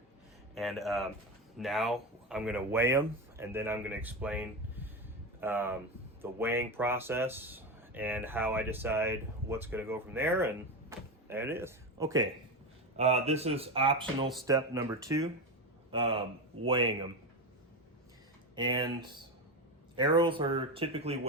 And now I'm going to weigh them, and then I'm going to explain the weighing process and how I decide what's going to go from there, and there it is. Okay, this is optional step number 2, weighing them. And arrows are typically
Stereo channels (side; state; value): both; normal; correlation 0.17